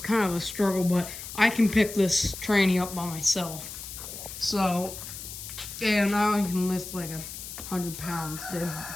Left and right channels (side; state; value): left; noise; hiss, 10 dB below the sound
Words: of a struggle, but I can pick this tranny up by myself. So, yeah, now I can lift like 100 pounds, dude.